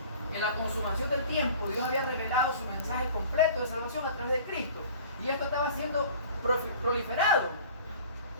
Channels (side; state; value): both; inverted; correlation -0.46